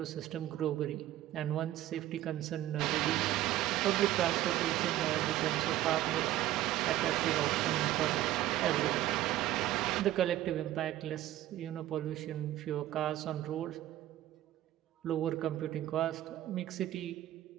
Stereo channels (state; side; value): quieter; left; 14.1 dB